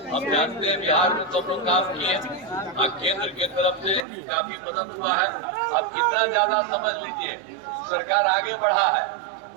हम जानते हैं बिहार में तो हम लोग काम किए, केंद्र की तरफ से काफी मदद हुआ है। अब कितना ज्यादा समझ लीजिए, सरकार आगे बढ़ा है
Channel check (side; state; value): left; drops out; at 4.0 s